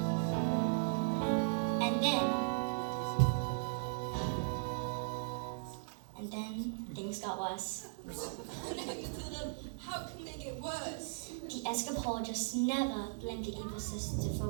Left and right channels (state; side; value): silent; left; 53 dB below the other